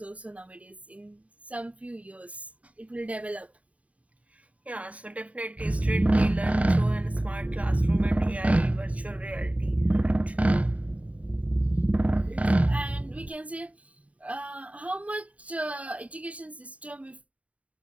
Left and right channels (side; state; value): left; late; 0.067 ms